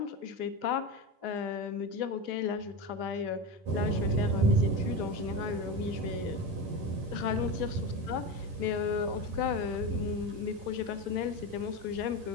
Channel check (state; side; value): late; left; 10 ms